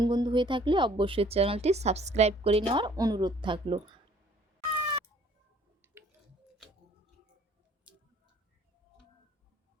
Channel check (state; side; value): normal; both; correlation 0.57